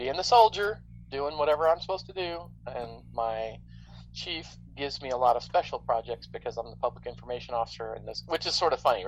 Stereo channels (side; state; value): both; identical; correlation 1.00